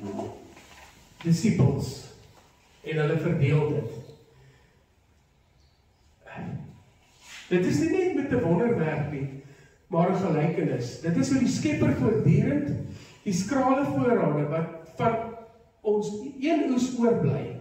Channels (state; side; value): identical; both; correlation 1.00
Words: disippels, en hulle verdeel dit. Dit is nie net met 'n wonderwerk nie, maar 'n gelykenis. Dit is hoe die Skepper voortdurend die skrale voorrade wat van ons een oes oorbly,